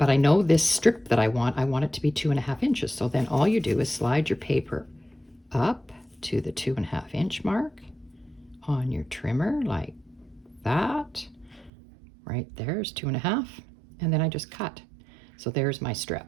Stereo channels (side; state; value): left; drops out; at 11.7 s